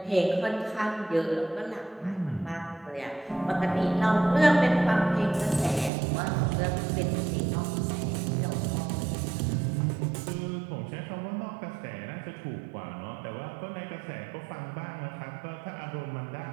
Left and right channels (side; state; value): left; drops out; at 5.9 s